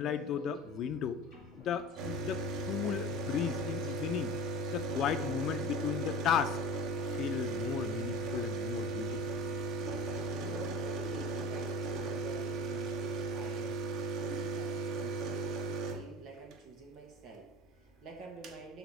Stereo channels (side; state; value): both; normal; correlation 0.36